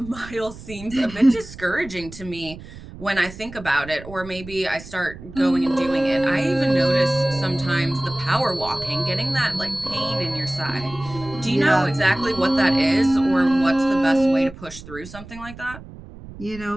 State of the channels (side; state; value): right; noise; rumble, 15 dB below the sound